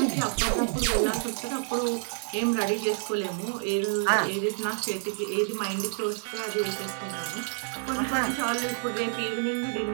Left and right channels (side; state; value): left; silent; 58 dB below the other